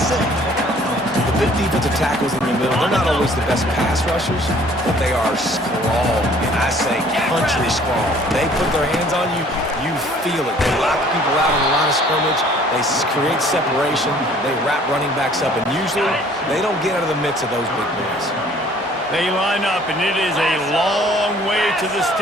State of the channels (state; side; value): normal; both; correlation 0.56